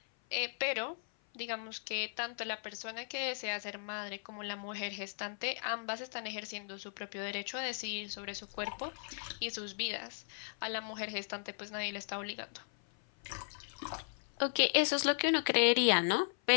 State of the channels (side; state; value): right; silent; 53 dB below the other